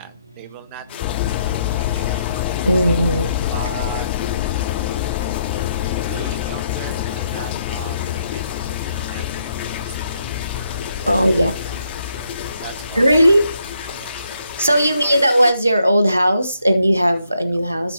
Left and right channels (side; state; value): both; inverted; correlation -0.74